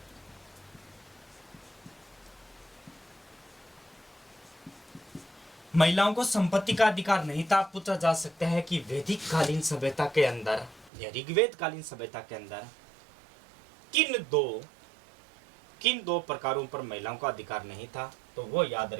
महिलाओं को संपत्ति का अधिकार नहीं था। पूछा जा सकता है कि वैदिक कालीन सभ्यता के अंदर या ऋग्वेद कालीन सभ्यता के अंदर किन दो प्रकारों पर महिलाओं का अधिकार नहीं था। तो वो याद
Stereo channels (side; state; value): left; drops out; at 10.9 s